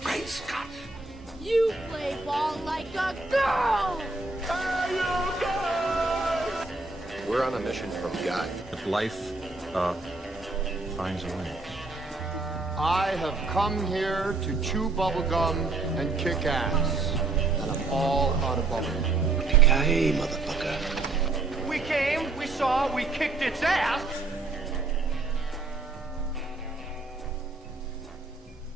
Great Scott! You play ball like a girl! We're on a mission from God. If life, finds a way. I have come here to chew bubblegum and kick ass. And I'm all out of bubblegum. Yippee-ki-yay, motherfucker. We came, we saw, we kicked its ass!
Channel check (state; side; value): quieter; left; 3.5 dB